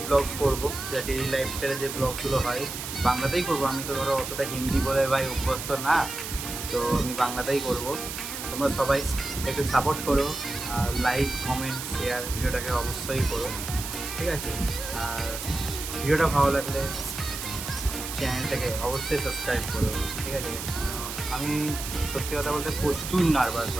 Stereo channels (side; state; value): right; noise; hiss, 7 dB below the sound